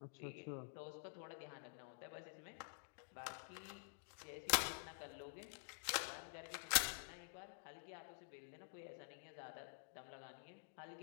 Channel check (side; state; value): right; silent; digital silence